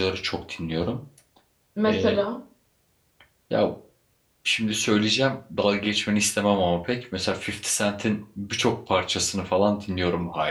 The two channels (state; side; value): identical; both; correlation 1.00